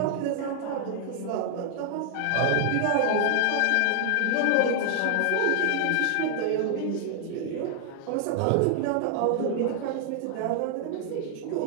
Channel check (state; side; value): different; both; correlation 0.00